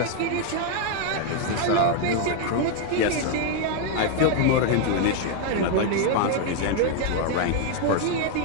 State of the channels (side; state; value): both; different; correlation 0.01